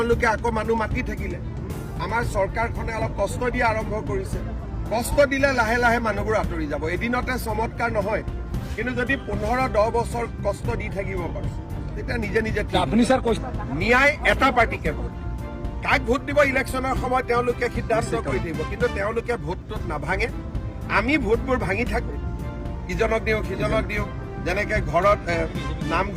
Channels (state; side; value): identical; both; correlation 1.00